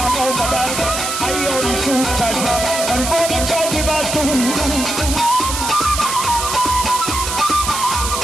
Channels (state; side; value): noise; right; hiss, 4 dB below the sound